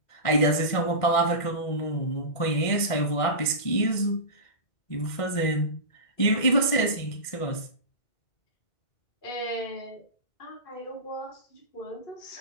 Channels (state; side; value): late; right; 1.6 ms